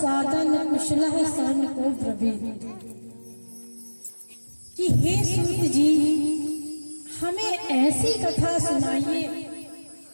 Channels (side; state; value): both; inverted; correlation -1.00